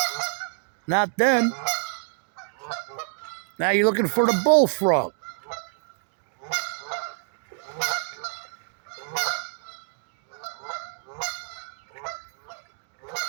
Not them. Now you're looking for the bullfrog.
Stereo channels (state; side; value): silent; left; digital silence